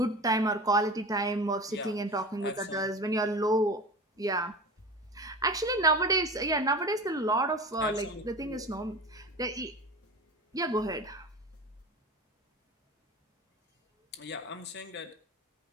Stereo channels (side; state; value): both; normal; correlation 0.32